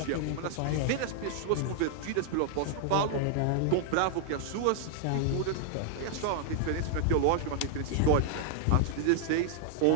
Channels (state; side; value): different; both; correlation -0.01